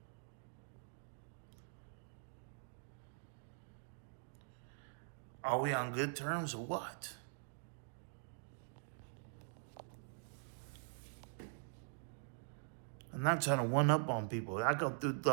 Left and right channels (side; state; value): left; silent; digital silence